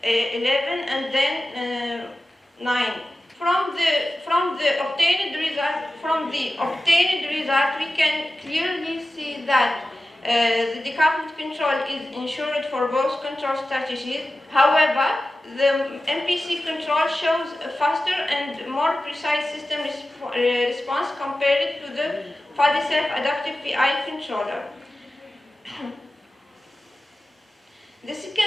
11, and then 9. From the obtained result, we can clearly see that the decoupled control is ensured for both control strategies. However, the MPC control shows a faster and more precise system response compared to the fuzzy self-adaptive PI controller. The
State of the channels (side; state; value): both; normal; correlation 0.94